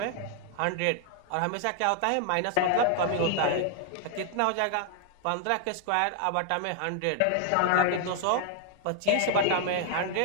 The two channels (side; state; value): both; different; correlation 0.00